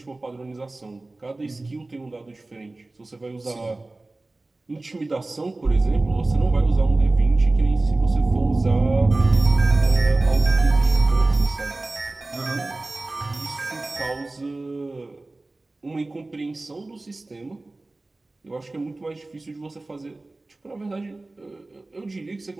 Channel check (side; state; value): left; quieter; 3.0 dB